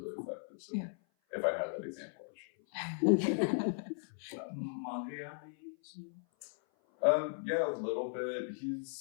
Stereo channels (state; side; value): silent; right; 53 dB below the other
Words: effective. So if I had that example, I should. Yeah, a little bit.